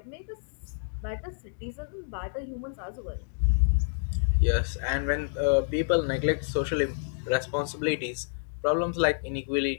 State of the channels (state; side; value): silent; right; digital silence